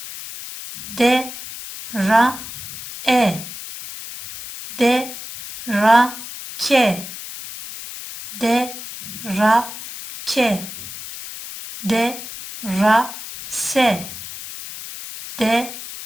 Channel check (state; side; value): noise; left; hiss, 11 dB below the sound